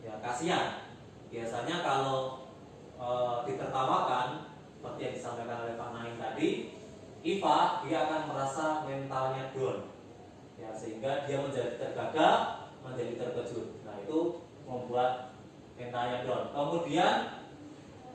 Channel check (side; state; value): both; identical; correlation 1.00